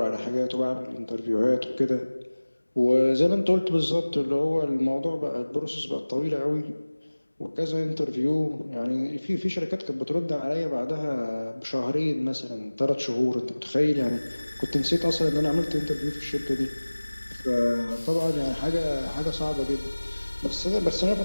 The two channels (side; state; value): both; inverted; correlation -1.00